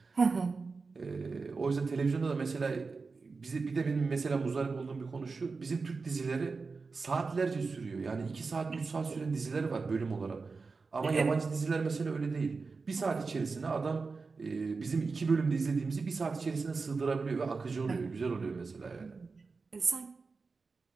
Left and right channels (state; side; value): quieter; left; 4.4 dB